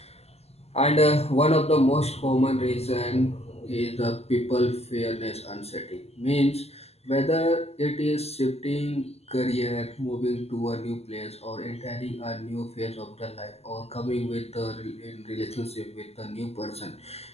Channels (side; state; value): right; late; 0.30 ms